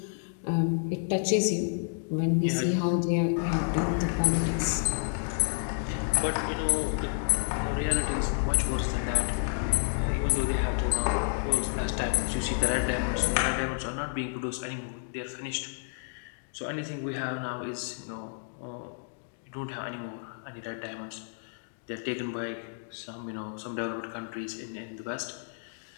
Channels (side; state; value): right; silent; digital silence